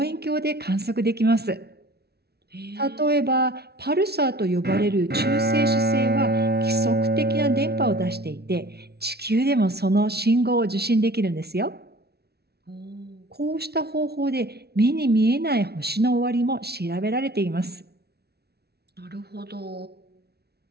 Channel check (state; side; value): late; left; 0.47 ms